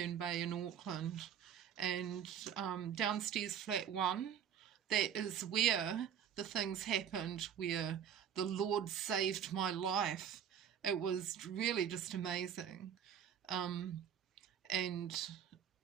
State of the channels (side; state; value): left; quieter; 8.7 dB